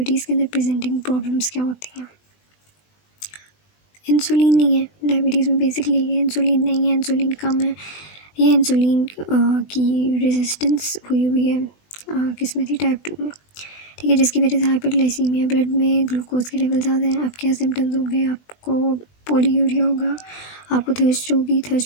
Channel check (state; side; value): late; right; 20 ms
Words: के अंदर प्रेजेंटिंग प्रॉब्लम्स क्या होती हैं? इंसुलिन नहीं है डायबिटीज़ में, बेसिकली ये इंसुलिन नहीं है, इंसुलिन कम है। ये इंसुलिन की रेजिस्टेंस हुई है किस में थी, टाइप 2 में, ठीक है। जिसकी वजह से हाइपरग्लाइसीमिया, ब्लड में ग्लूकोज के लेवल ज़्यादा हैं। अब क्या सिम्टम्स होंगे, आपको पोलीयूरिया होगा, आपको थर्स्ट होगी,